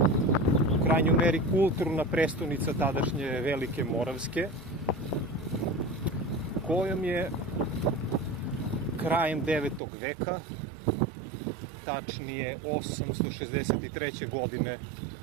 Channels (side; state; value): left; drops out; at 9.8 s